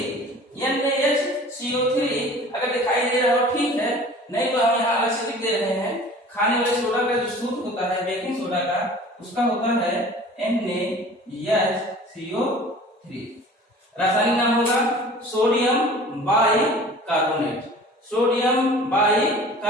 NaHCO3 अगर दिखाई दे रहा हो ठीक है, नहीं तो हम यहाँ अलग से लिख दे रहे हैं। खाने वाले सोडा का जो सूत्र होता है बेकिंग सोडा का, उसका होता है NaHCO3। रासायनिक नाम होगा सोडियम बाइकार्बोनेट। सोडियम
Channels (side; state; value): both; normal; correlation 0.45